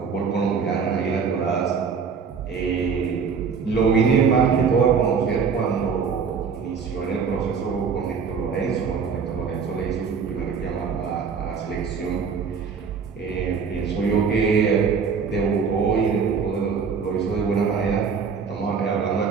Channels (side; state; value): left; quieter; 5.9 dB